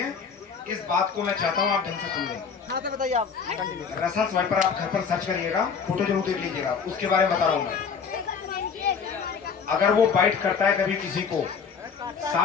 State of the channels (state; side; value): quieter; right; 6.1 dB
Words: इस बात को मैं चाहता हूँ आप ढंग से सुन लें। हाँ तो बताइए आप कंटिन्यू। रसल स्वाइपर आप घर पर सर्च करिएगा, फोटो जरूर देख लीजिएगा, उसके बारे में बता रहा हूँ मैं। अगर वो बाइट करता है कभी किसी को,